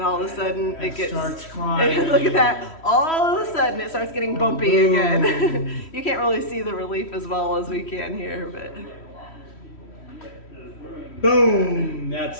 all of a sudden it starts climbing. Look at that. All of a sudden it starts getting bumpy again. You can't really see the relief as well as we can here, but. Boom!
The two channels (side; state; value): right; late; 3.1 ms